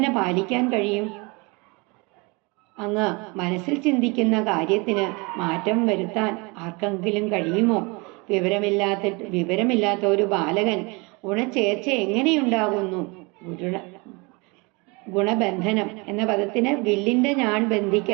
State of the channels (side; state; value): left; quieter; 28.0 dB